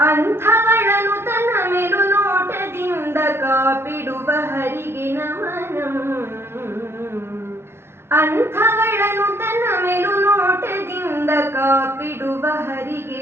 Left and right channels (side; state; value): left; late; 0.12 ms